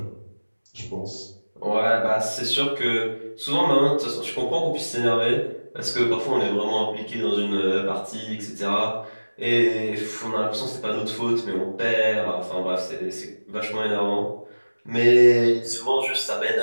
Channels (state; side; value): inverted; both; correlation -1.00